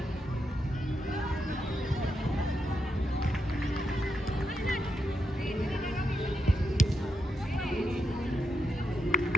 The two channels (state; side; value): normal; both; correlation 0.83